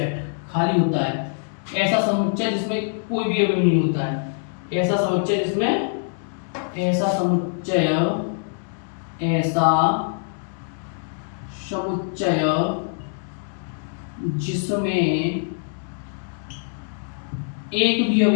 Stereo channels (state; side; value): silent; right; digital silence